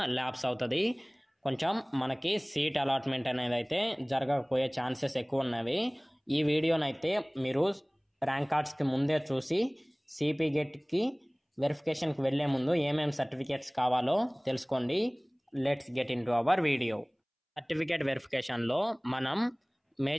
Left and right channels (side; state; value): both; identical; correlation 1.00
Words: ల్యాప్స్ అవుతుంది. కొంచెం మనకి సీట్ అలాట్మెంట్ అనేది అయితే జరగకపోయే ఛాన్సెస్ ఎక్కువ ఉన్నవి. ఈ వీడియోనైతే మీరు ర్యాంక్ కార్డ్స్కి ముందే చూసి సిపి గెట్కి వెరిఫికేషన్కి వెళ్ళే ముందు ఏమేమి సర్టిఫికేట్స్ కావాలో తెలుసుకోండి. Let's get into our video. Certificate వెరిఫికేషన్లో మనం